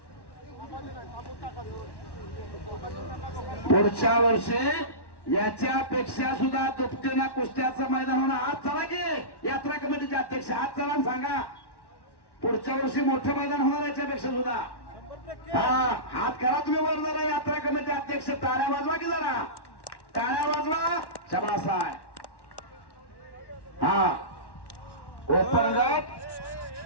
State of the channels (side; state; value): right; late; 1.1 ms